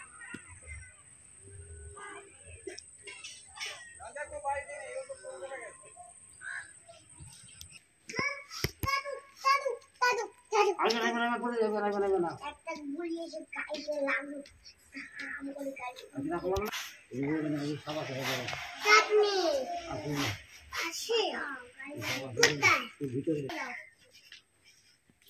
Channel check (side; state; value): both; identical; correlation 1.00